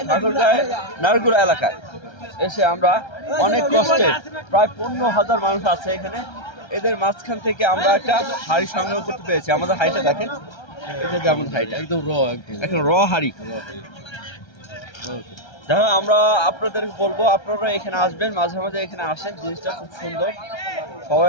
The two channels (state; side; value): late; right; 1.3 ms